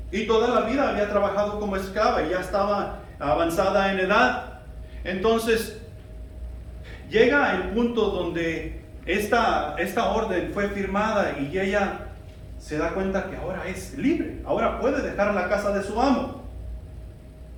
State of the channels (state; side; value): identical; both; correlation 1.00